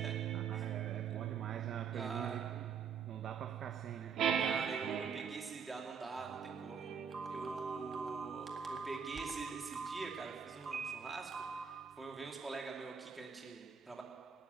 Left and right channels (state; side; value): quieter; left; 6.7 dB